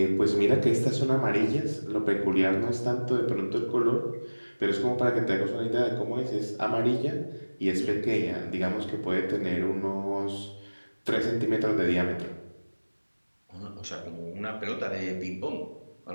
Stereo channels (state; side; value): inverted; both; correlation -1.00